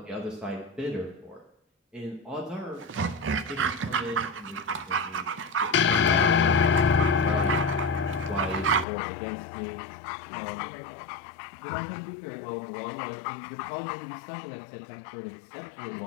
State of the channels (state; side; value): drops out; right; at 8.8 s